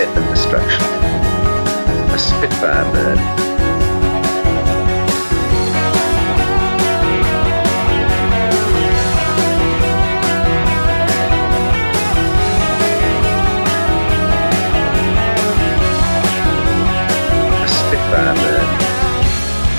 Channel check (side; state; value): both; inverted; correlation -1.00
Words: and destruction. A Spitfire bird. A Spitfire bird.